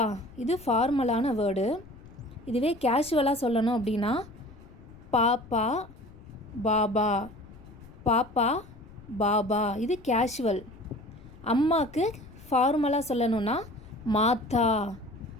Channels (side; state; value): left; noise; rumble, 21 dB below the sound